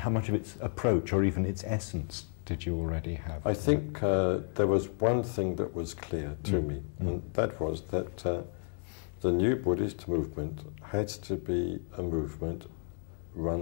much of its approach or even its essence did you already have? I think there was one thing that was clear to me, and that was that the new Buddhist movement had to be a movement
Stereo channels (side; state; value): right; silent; 56 dB below the other